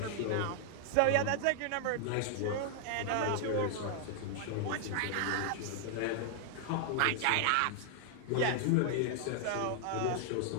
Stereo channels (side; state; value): both; different; correlation 0.00